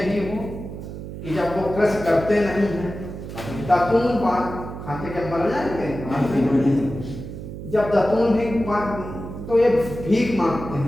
ही हो कि जब वो कृषि करते नहीं हैं, दातून खाते के मर जाएंगे। जब दातून भी तो ये भीख मांगते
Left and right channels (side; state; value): right; noise; hum, 10 dB below the sound